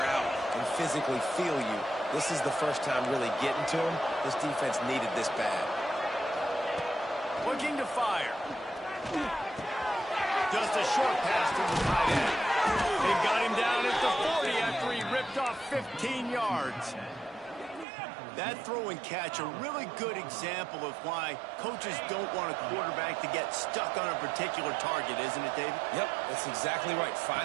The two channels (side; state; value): left; drops out; at 17.9 s